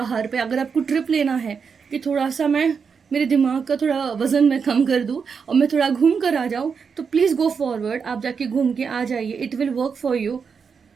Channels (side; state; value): left; quieter; 6.0 dB